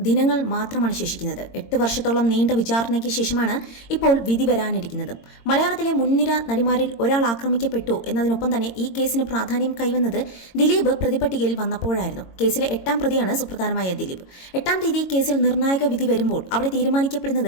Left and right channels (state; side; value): late; right; 22 ms